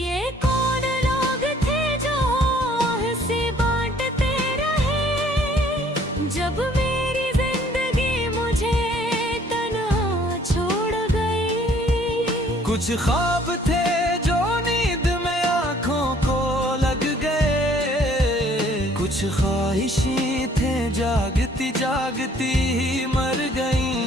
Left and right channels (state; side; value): normal; both; correlation 0.59